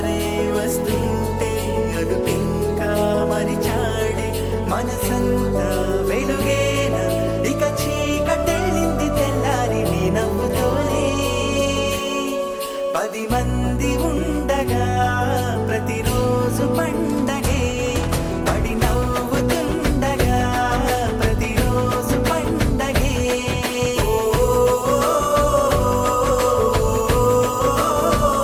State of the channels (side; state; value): both; identical; correlation 1.00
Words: వస్తుంటే అదుపింకా మరిచాడే మనసంతా వెలుగేన ఇక చీకటెళ్ళింది తెల్లారి నీ నవ్వుతోనే 10 మంది ఉండగా ప్రతిరోజు పండగే పడి నవ్వుతుండగా ప్రతిరోజు పండగే